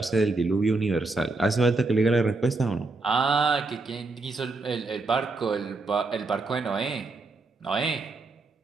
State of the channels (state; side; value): quieter; left; 3.5 dB